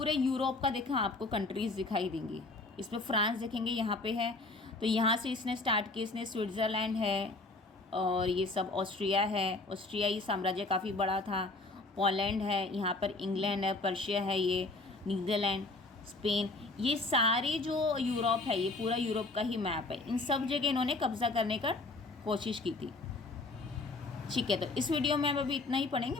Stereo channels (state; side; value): quieter; right; 3.3 dB